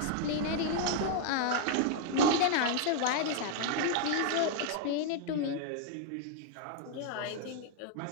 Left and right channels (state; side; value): different; both; correlation 0.00